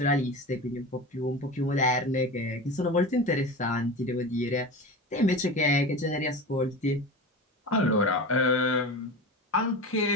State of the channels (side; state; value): both; normal; correlation 0.29